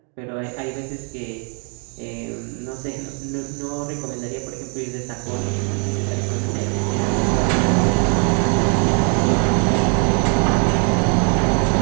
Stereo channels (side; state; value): left; quieter; 38.1 dB